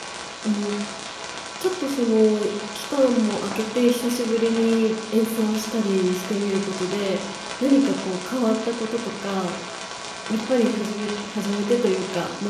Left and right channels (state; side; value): identical; both; correlation 1.00